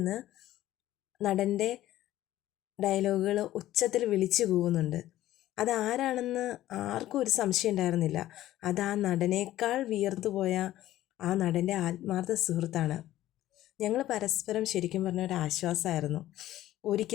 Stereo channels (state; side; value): quieter; right; 14.2 dB